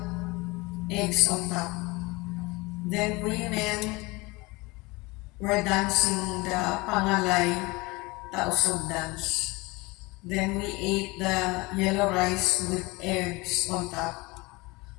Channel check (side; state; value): right; quieter; 24.0 dB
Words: eggs on top. Then women were dancing the Pangalay Tausugs dance. Then we ate the yellow rice with eggs on top.